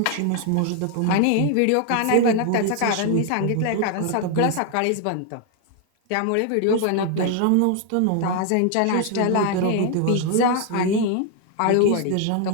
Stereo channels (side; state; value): both; different; correlation 0.00